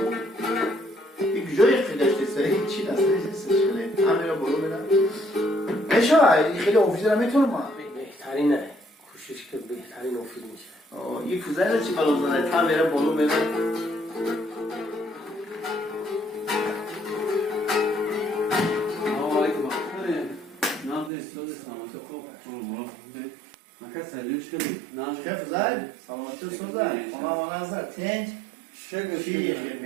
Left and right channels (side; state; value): left; drops out; at 21.1 s